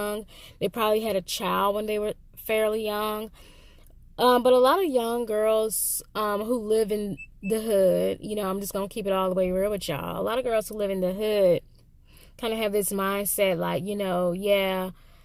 They probably had a child when they were fairly young. But a lot of young girls who live in the hood, I'm just going to keep it all the way real with y'all. A lot of girls who live in the hood kind of have this mindset like, yeah,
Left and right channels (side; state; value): both; identical; correlation 1.00